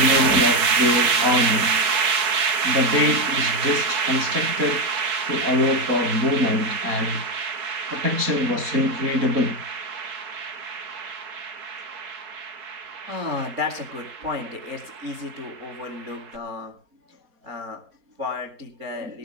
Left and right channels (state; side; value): late; left; 4.3 ms